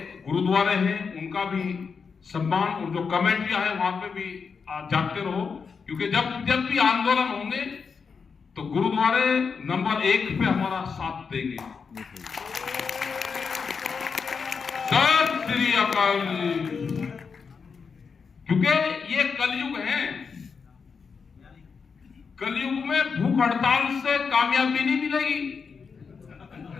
गुरुद्वारे हैं उनका भी सम्मान, और जो कमेटियां हैं वहां पे भी जाते रहो। क्योंकि जब भी आंदोलन होंगे तो गुरुद्वारे नंबर 1 पे हमारा साथ देंगे। सत श्री अकाल। क्योंकि ये कलयुग है, कलयुग में भूख हड़ताल से कामयाबी नहीं मिलेगी।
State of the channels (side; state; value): right; quieter; 5.6 dB